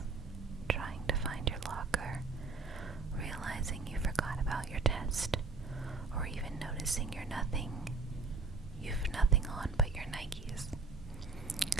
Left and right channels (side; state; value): left; quieter; 4.2 dB